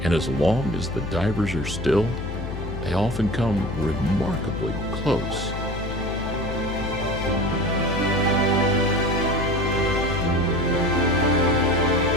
and as long as the divers are still, they often come remarkably close.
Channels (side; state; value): left; noise; hum, 6 dB below the sound